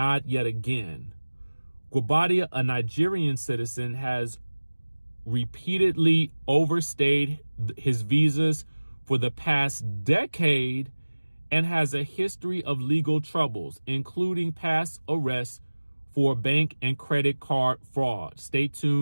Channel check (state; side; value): inverted; both; correlation -1.00